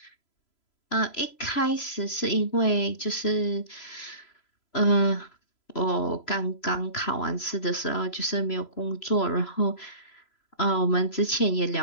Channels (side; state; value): right; late; 3.0 ms